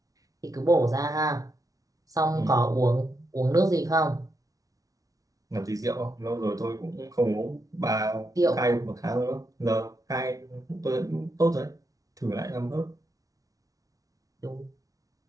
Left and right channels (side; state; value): left; late; 0.17 ms